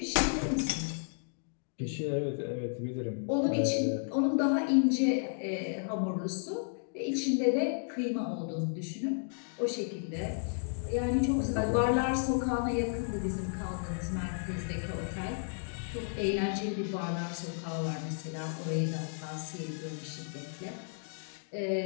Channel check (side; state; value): right; silent; digital silence